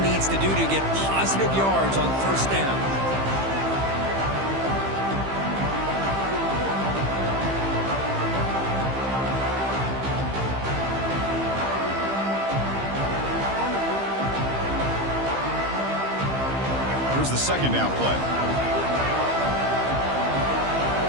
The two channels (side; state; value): left; late; 15 ms